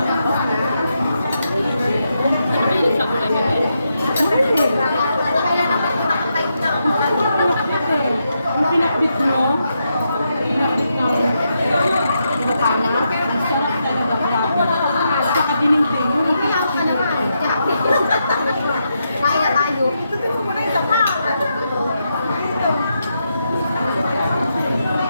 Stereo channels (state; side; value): inverted; both; correlation -0.83